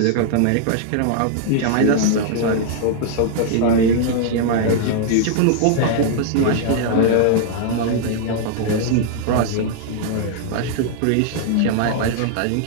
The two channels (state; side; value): different; both; correlation -0.01